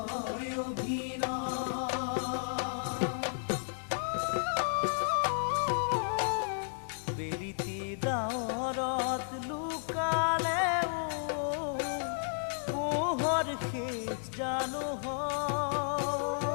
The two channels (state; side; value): silent; right; 56 dB below the other